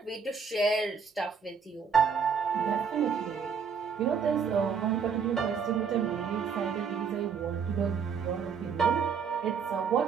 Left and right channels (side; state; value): left; quieter; 6.3 dB